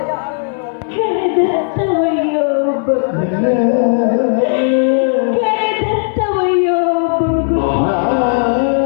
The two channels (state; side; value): silent; right; 70 dB below the other